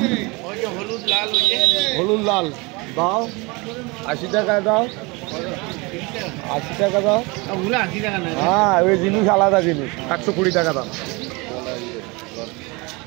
হলুদ লাল দাও, 80 টাকায় দাও, 80 টাকা দাও। হ্যাঁ, ওই জিনিস আলাদা জিনিস, 120 টাকা দাম।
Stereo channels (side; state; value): left; quieter; 26.5 dB